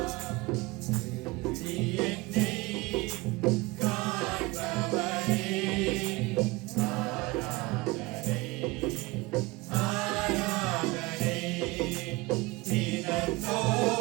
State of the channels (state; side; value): quieter; left; 22.9 dB